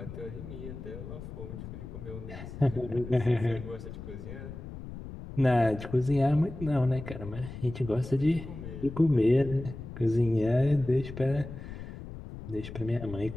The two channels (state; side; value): noise; left; rumble, 11 dB below the sound